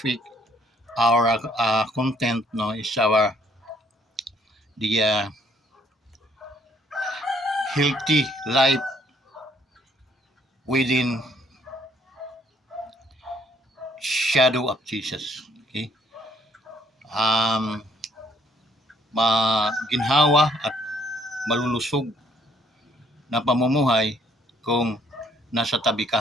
our content, no, is the healthy life within shadow of Jesus. Okay? Maginhawa at malulusog na pamumuhay kung nasa tabi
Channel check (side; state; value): both; normal; correlation 0.65